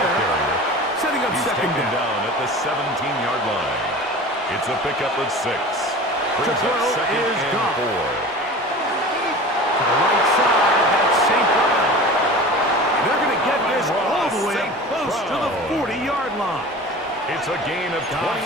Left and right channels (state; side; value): normal; both; correlation 0.37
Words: setting up He's 2nd taken down. down at the 17-yard line. It's a pickup of 6. Brings throw up 2nd is and Goff. 4. To the right side, that's St. Brown. They're going to get this all the way up close to the 40-yard line. It's a gain of